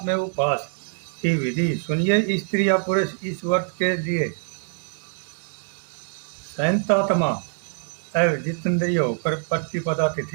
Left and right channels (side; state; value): left; silent; digital silence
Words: में उपवास की विधि सुनिए। स्त्री या पुरुष इस व्रत के लिए संयतात्मा एवं जितेंद्रिय होकर प्रतिपदा